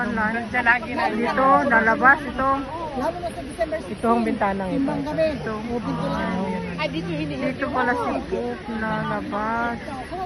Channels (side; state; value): both; identical; correlation 1.00